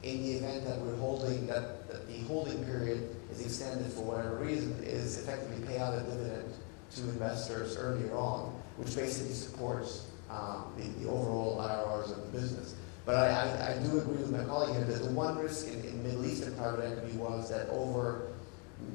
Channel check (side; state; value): right; quieter; 36.9 dB